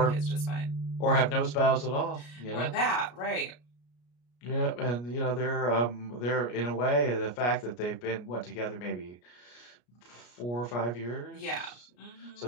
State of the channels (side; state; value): right; late; 33 ms